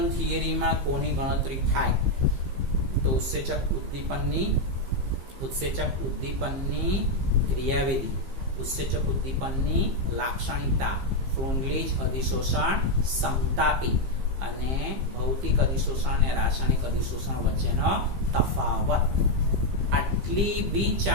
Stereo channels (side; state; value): left; late; 15 ms